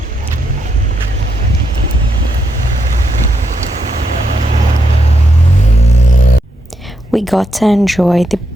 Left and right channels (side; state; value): both; normal; correlation 0.80